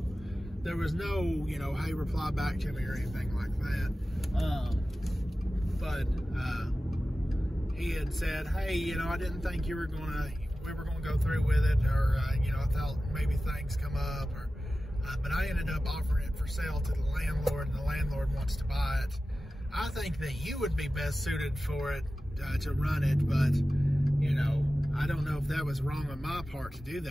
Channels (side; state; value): both; normal; correlation 0.95